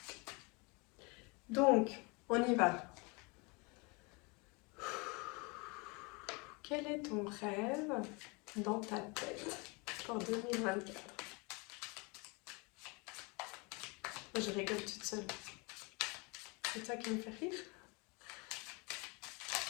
Donc, on y va. Quel est ton rêve dans ta tête pour 2024? Je rigole toute seule. C'est ça qui me fait rire.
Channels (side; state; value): right; quieter; 29.0 dB